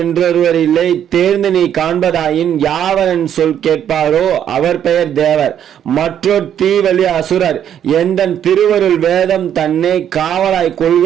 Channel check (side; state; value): left; quieter; 9.7 dB